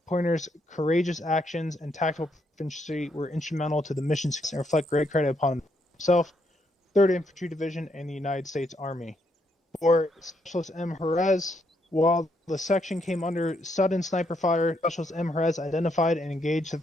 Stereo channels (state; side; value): normal; both; correlation 0.75